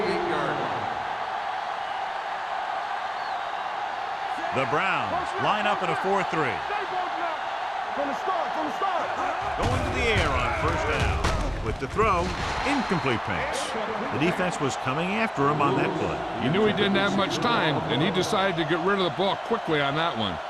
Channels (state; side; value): identical; both; correlation 1.00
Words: line. The Browns line up in a 4-3. From the start. Going to the air on first down. With the throw, incomplete pass. The defense was coming after him on that play. He knew he didn't have much time, and he decided to get rid of the ball quickly on that one.